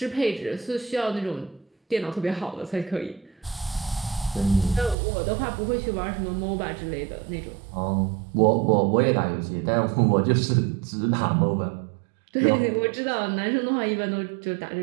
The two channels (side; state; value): left; drops out; at 5.0 s